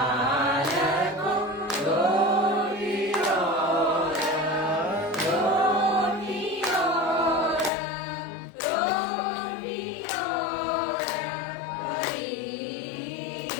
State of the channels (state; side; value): drops out; right; at 7.7 s